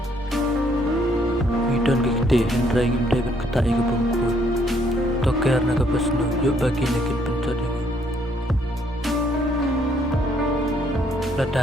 Ngidon gikti hendrai ngim deban kata ika bangkut. Toker naga besnu yuk bagi nekin pencot ini.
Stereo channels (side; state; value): both; normal; correlation 0.68